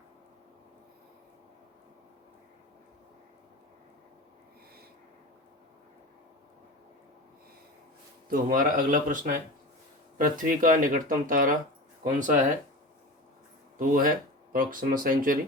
तो हमारा अगला प्रश्न है, पृथ्वी का निकटतम तारा कौन सा है? तो वो है प्रॉक्सिमा सेंचुरी।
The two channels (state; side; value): normal; both; correlation 0.31